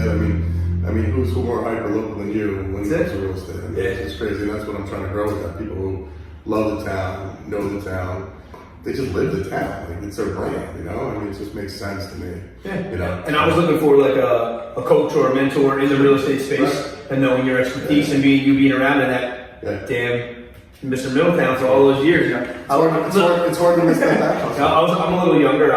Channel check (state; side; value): identical; both; correlation 1.00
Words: I mean, who's more hyper local than you when it comes to real estate? I mean, it's crazy, and that's what I'm trying to grow with that. People who love the town, know the town, they just live the town. Like, it's their brand, you know? I mean, it just makes sense to me. Yeah. You know? And I was looking for like a coach or a mentor in the real estate space, and knowing your expertise and being around in that damn Mr. Middletown for all those years. It's hard to miss that back. I'm a little younger,